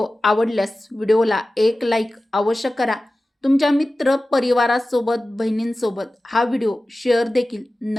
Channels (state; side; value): normal; both; correlation 0.96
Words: आवडल्यास व्हिडिओला एक लाईक अवश्य करा. तुमच्या मित्र परिवारासोबत बहिणींसोबत हा व्हिडिओ शेअर देखील